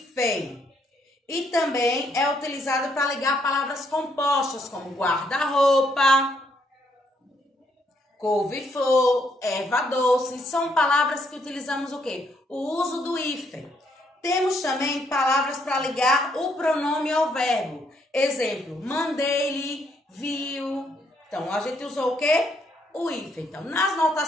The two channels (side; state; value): both; normal; correlation 0.73